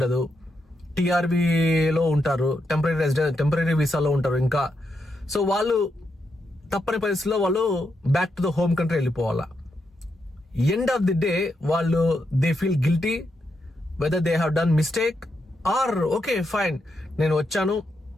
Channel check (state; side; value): normal; both; correlation 0.83